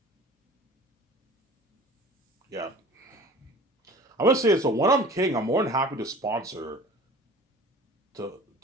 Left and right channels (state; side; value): normal; both; correlation 0.43